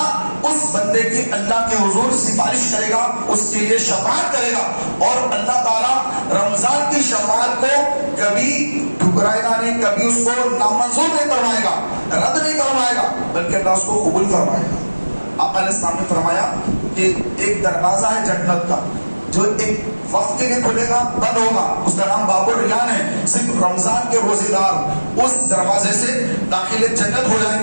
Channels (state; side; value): inverted; both; correlation -1.00